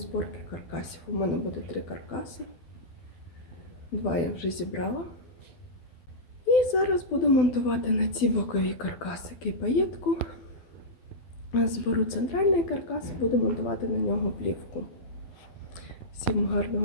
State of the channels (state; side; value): late; right; 12 ms